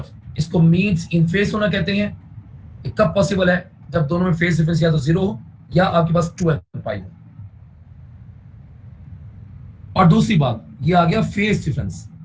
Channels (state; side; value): identical; both; correlation 1.00